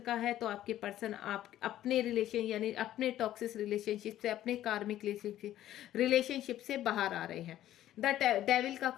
है, तो आपके पर्सन आप अपने रिलेशन यानी अपने टॉक्सिक रिलेशनशिप से, अपने कार्मिक रिलेशनशिप से बाहर आ रहे हैं। द डेविल का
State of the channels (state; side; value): quieter; right; 12.9 dB